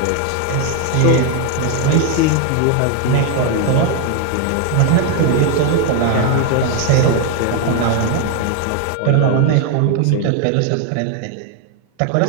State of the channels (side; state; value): both; different; correlation 0.00